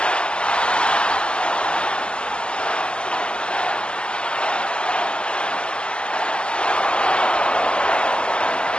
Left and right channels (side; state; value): right; late; 0.051 ms